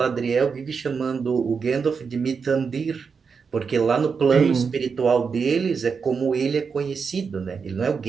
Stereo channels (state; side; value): quieter; left; 5.7 dB